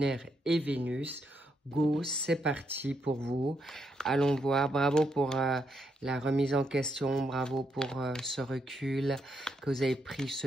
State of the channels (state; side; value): normal; both; correlation 0.78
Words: et Vénus, go, c'est parti pour vous. Allons voir, bravo pour la remise en question, bravo pour ce recul, que vous avez pris